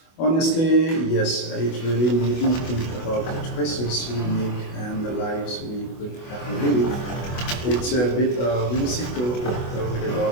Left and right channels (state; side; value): late; right; 24 ms